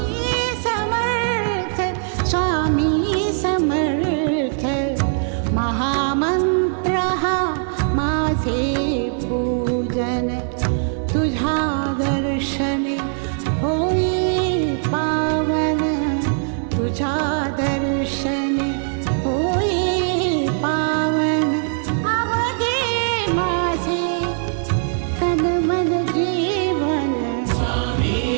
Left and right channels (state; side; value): silent; left; digital silence